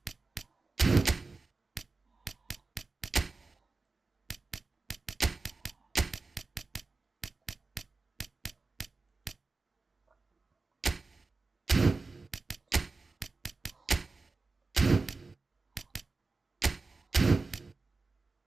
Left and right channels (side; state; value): left; quieter; 3.8 dB